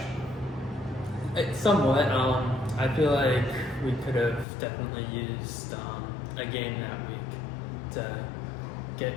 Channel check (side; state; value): right; drops out; at 4.5 s